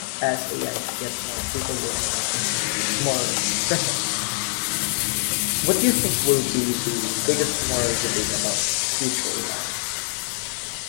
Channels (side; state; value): right; silent; digital silence